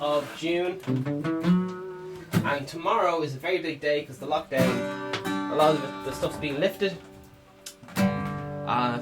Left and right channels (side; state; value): both; identical; correlation 1.00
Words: June. And tomorrow is a very big day because the lockdown, a lot of the stuff's being lifted. I